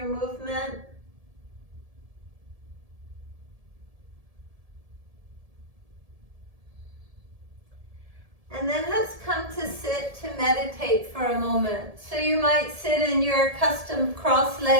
movement. And then let's come to sit to meditate for a moment. So you might sit in your custom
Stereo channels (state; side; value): late; left; 1.7 ms